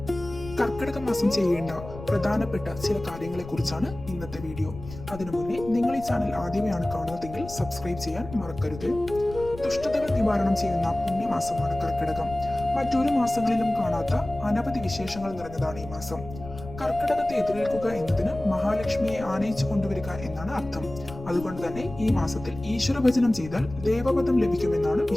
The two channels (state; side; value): noise; left; rumble, 14 dB below the sound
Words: കർക്കിടക മാസം ചെയ്യേണ്ട പ്രധാനപ്പെട്ട ചില കാര്യങ്ങളെ കുറിച്ചാണ് ഇന്നത്തെ വീഡിയോ. അതിനു മുന്നേ നിങ്ങൾ ഈ ചാനൽ ആദ്യമായാണ് കാണുന്നതെങ്കിൽ സബ്സ്ക്രൈബ് ചെയ്യാൻ മറക്കരുത്. ദുഷ്ടതകൾ നിവാരണം ചെയ്യുന്ന പുണ്യമാസമാണ് കർക്കിടകം. മറ്റൊരു മാസങ്ങളിലും കാണാത്ത അനവധി വിശേഷങ്ങൾ നിറഞ്ഞതാണ് ഈ മാസം. കർക്കിടകത്തെ എതിരേൽക്കുക എന്നതിന് മഹാലക്ഷ്മിയെ ആനയിച്ചു കൊണ്ടുവരിക എന്നാണ് അർത്ഥം. അതുകൊണ്ട് തന്നെ ഈ മാസത്തിൽ ഈശ്വരഭജനം ചെയ്താൽ ദേവപദം ലഭിക്കുമെന്നാണ്